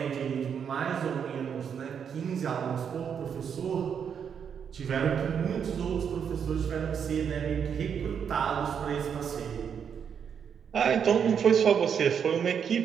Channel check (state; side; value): quieter; left; 7.5 dB